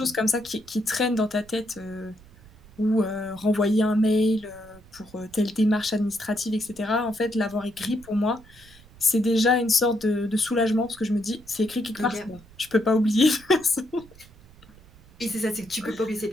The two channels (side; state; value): right; noise; rumble, 24 dB below the sound